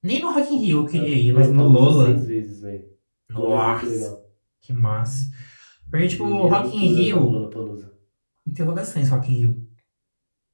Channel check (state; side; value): inverted; both; correlation -1.00